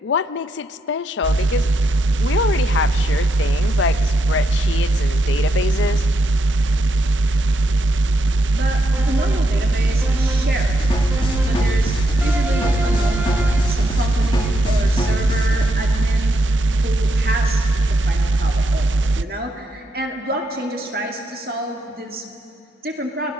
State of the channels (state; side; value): normal; both; correlation 0.81